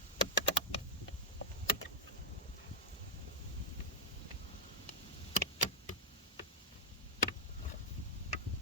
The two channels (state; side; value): normal; both; correlation -0.06